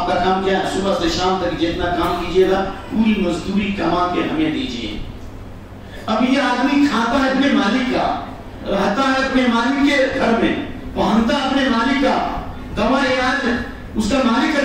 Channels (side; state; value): both; identical; correlation 1.00